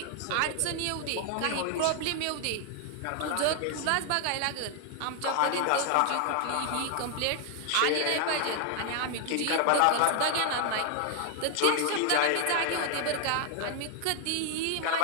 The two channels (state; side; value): different; both; correlation 0.00